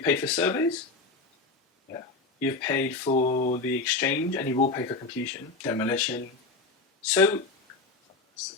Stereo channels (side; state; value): right; quieter; 3.7 dB